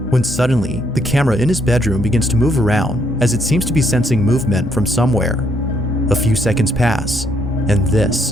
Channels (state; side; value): normal; both; correlation 0.71